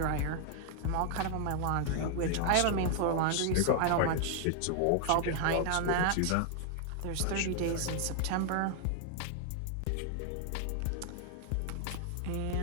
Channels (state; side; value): different; both; correlation 0.00